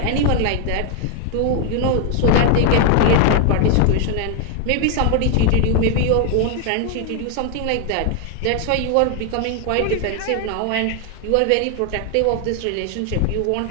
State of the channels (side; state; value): both; different; correlation 0.00